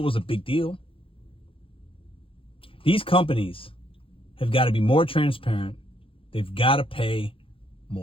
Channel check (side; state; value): right; late; 0.26 ms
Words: was a big deal. These companies have got to be more transparent. They've got to pay